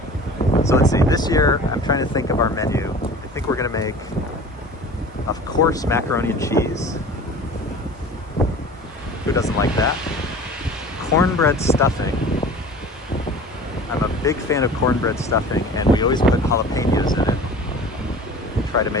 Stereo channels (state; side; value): normal; both; correlation 0.41